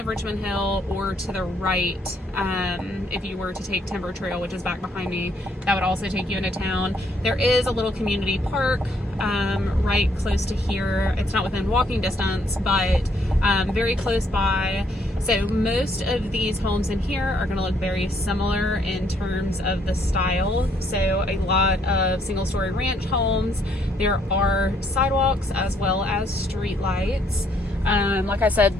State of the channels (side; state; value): both; normal; correlation 0.69